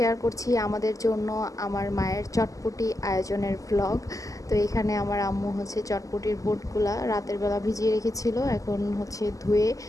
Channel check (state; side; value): late; right; 0.16 ms